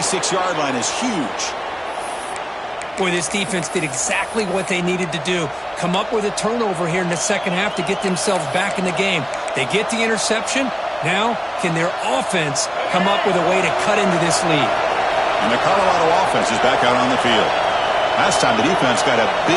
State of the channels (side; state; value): both; identical; correlation 1.00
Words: line is huge. Boy, this defense did exactly what they needed to do. Come up with a turnover here in the second half to get themselves back in the game. They get the interception. Now, can their offense come up with a way to cut into this lead? And the Colorado offense is back out on the field. Last time the defense got a